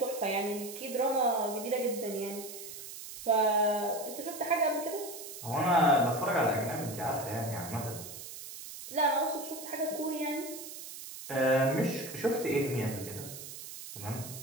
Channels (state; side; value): noise; right; hiss, 11 dB below the sound